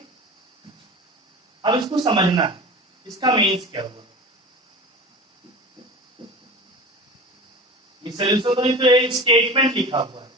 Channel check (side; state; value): both; normal; correlation 0.34